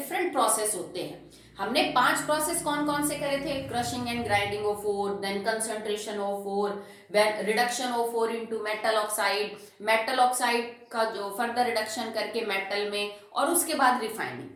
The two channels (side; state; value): both; identical; correlation 1.00